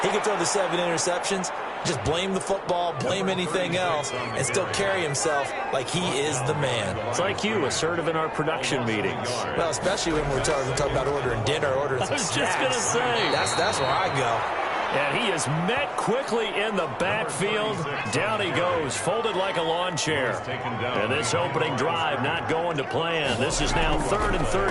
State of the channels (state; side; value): identical; both; correlation 1.00